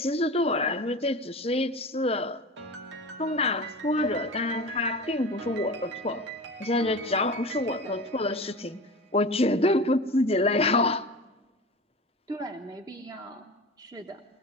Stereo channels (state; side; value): normal; both; correlation 0.32